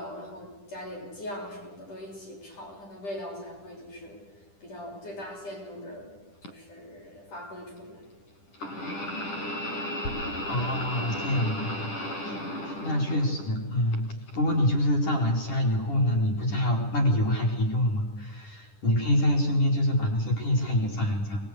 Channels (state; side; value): late; right; 10 ms